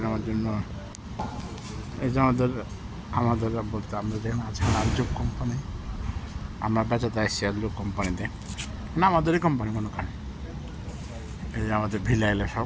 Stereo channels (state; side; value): identical; both; correlation 1.00